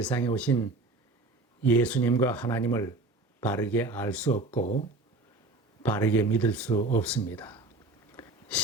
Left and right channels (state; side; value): quieter; left; 3.1 dB